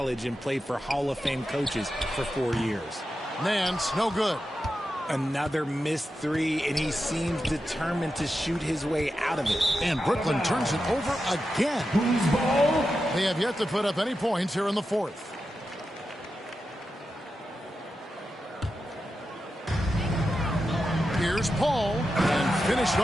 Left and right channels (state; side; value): normal; both; correlation 0.89